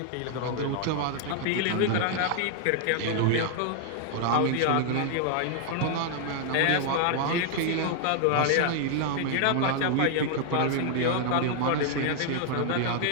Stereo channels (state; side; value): different; both; correlation 0.00